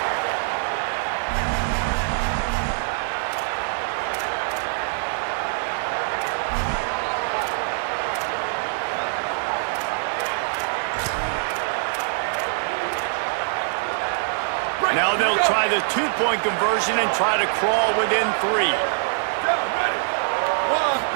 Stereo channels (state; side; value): silent; left; 63 dB below the other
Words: Now they'll try the 2-point conversion and try to crawl within 3.